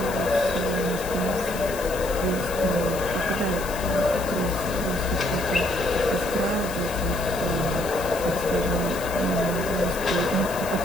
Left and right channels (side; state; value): left; noise; hiss, 12 dB below the sound